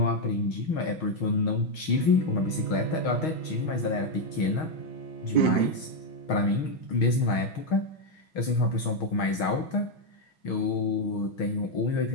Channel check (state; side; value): late; right; 6.3 ms